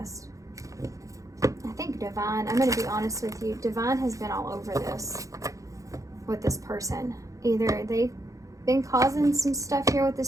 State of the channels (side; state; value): left; late; 0.16 ms